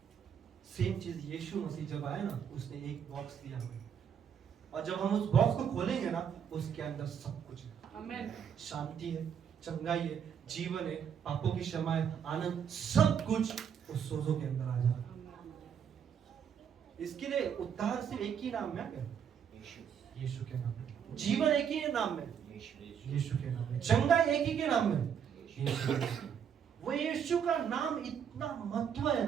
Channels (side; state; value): left; quieter; 7.9 dB